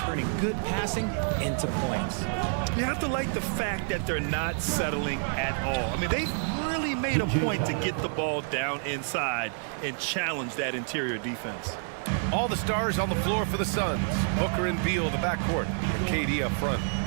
good passing into points. You have to like the fact that they're not settling at all. I mean, they've really made a point to get the ball down inside and challenge that interior defense. All the stars on the floor for the Suns. Booker and Beal, the backcourt, and KD up front.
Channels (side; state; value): left; silent; 59 dB below the other